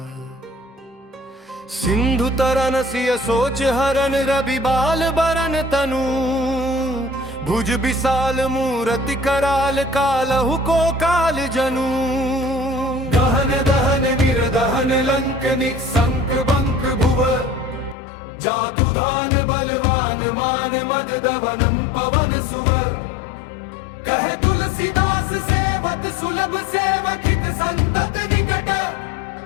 सिंधु तरन सिय सोच हरन रवि बाल बरन तनु भुज विशाल मूरति कराल कालहु को काल जनु दहन दहन निर्दहन लंक निसंक बंक भुव जातु धान बलवान मान मद दवनम पवन सुव कहे तुलसीदास सेवत सुलभ सेवक हित संतत निकट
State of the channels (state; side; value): drops out; right; at 17.9 s